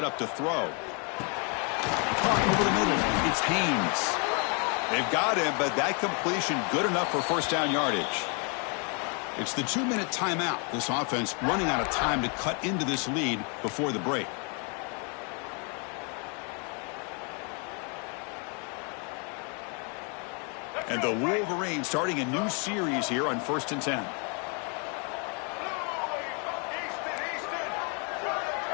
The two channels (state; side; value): quieter; right; 36.6 dB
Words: up to throw. Caught over the middle. It's Haynes. They've got him, but that completion good enough for first down yardage. It's the 2-minute timeout. This offense running out of time to cut into this lead before the break. And the Wolverines starting a new series here on 1st and 10.